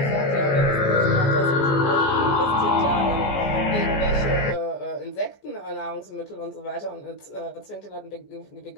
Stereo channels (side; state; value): right; late; 14 ms